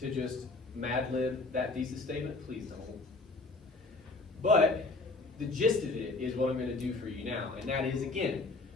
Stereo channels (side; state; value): right; quieter; 3.4 dB